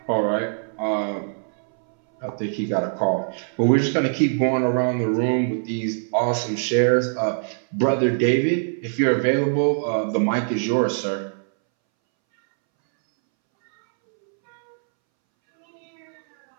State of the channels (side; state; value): left; silent; 63 dB below the other